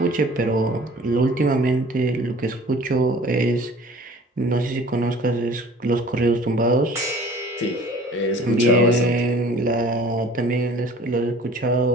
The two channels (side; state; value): both; normal; correlation 0.47